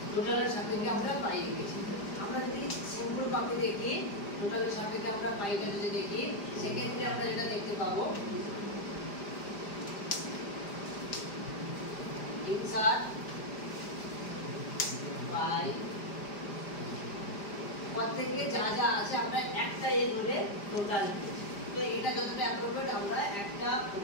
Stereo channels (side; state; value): right; late; 5.0 ms